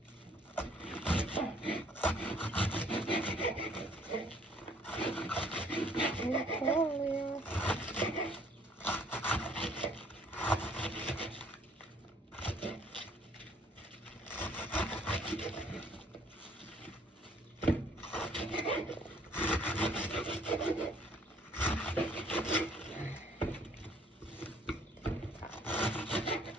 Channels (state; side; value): normal; both; correlation 0.60